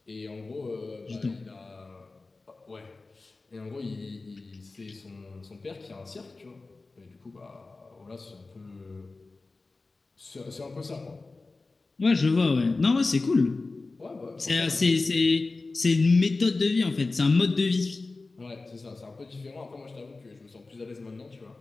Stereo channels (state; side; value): quieter; right; 3.6 dB